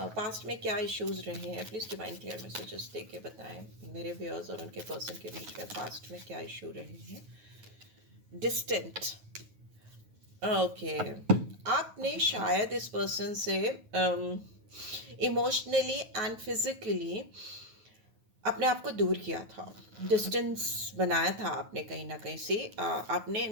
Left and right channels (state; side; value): late; left; 9.4 ms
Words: Past में क्या इश्यूज रहे हैं, प्लीज डिवाइन क्लियर मैसेजेस दे के बताएं मेरे व्यूअर्स और उनके पर्सन के बीच में पास्ट में क्या इशू रहे हैं। डिस्टेंट, ओके, आपने शायद इस पर्सन से इमोशनली एंड फिजिकली अपने आप को दूर किया था, डिस्टेंस बनाया था आपने कहीं ना कहीं से, आपने